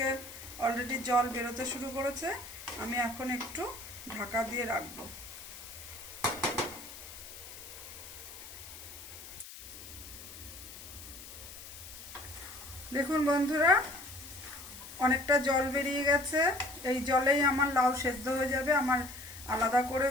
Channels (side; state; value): left; noise; hiss, 14 dB below the sound